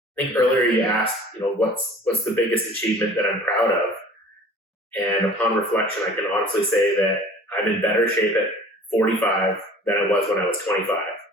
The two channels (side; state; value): both; normal; correlation 0.46